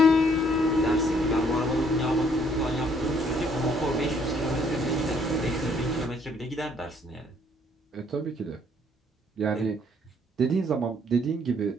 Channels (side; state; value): both; normal; correlation 0.65